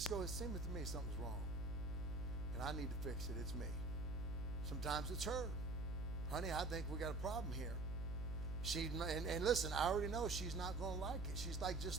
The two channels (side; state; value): right; noise; hum, 3 dB below the sound